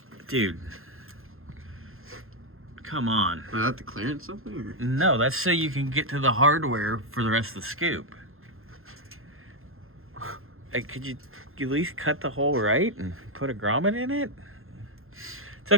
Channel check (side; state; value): left; late; 0.61 ms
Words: dude, come on. Is that to clearance something? Or? No, that's so you can get to the hardware for the rest of the scoop. Like, could you at least cut the hole right and put a grommet in it? It's